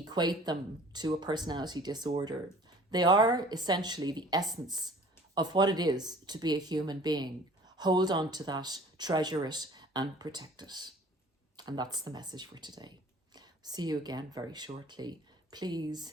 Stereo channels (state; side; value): normal; both; correlation 0.49